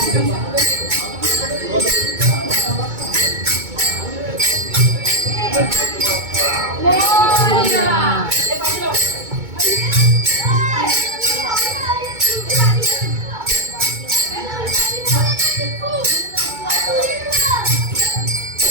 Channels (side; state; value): left; late; 2.2 ms